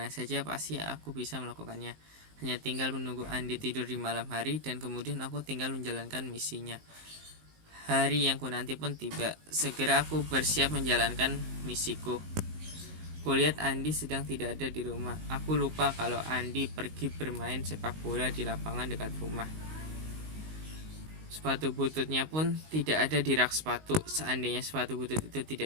saja pasti aku bisa melakukannya. Hanya tinggal menunggu Andi tidur di malam hari dan kemudian aku tinggal menjalankan misinya. Hari yang kunanti pun tiba. Segera aku bersiap menjalankan misiku. Kulihat Andi sedang tidak ada di rumah. Aku lupa kalau Andi pergi bermain sepak bola di lapangan dekat rumah. Sepatu bututnya pun tidak ada di rak sepatu. Seandainya sepatu butut itu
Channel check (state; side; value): late; left; 19 ms